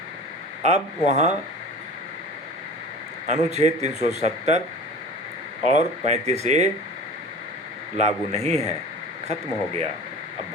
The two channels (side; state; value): both; normal; correlation 0.38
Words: अब वहाँ अनुच्छेद 370 और 35A लागू नहीं है, खत्म हो गया। अब